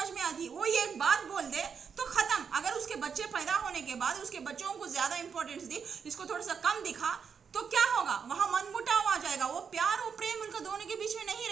में आती? वो ये एक बात बोल दे तो खत्म। अगर उसके बच्चे पैदा होने के बाद उसके बच्चों को ज्यादा इंपॉर्टेंस दी, इसको थोड़ा सा कम दिखा, तो क्या होगा? वहां मनमुटाव आ जाएगा, वो प्यार और प्रेम उनका दोनों के बीच में नहीं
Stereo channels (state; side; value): quieter; left; 6.5 dB